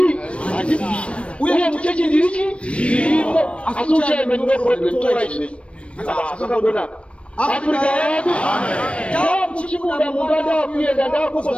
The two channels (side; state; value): right; late; 0.061 ms